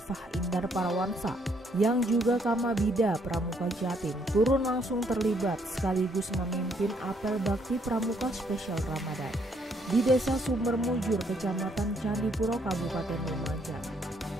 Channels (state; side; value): normal; both; correlation 0.69